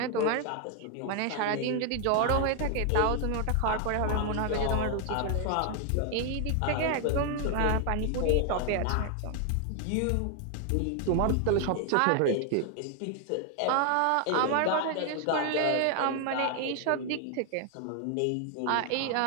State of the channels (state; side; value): different; both; correlation 0.00